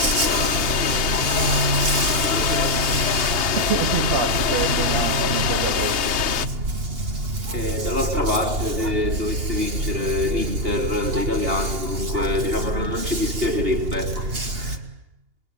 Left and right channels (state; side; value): late; left; 2.8 ms